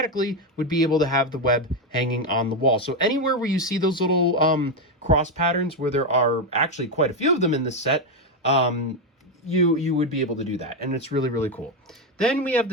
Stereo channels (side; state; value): both; normal; correlation 0.07